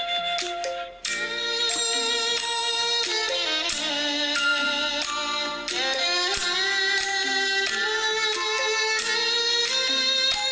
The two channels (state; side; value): identical; both; correlation 1.00